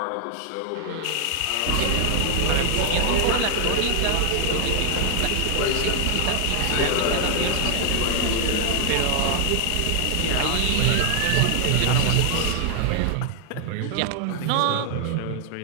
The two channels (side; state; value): both; different; correlation 0.00